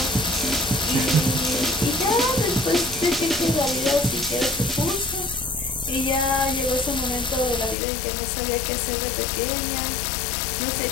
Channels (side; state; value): right; drops out; at 7.8 s